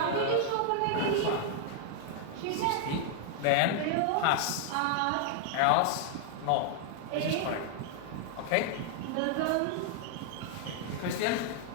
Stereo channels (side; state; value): both; different; correlation 0.00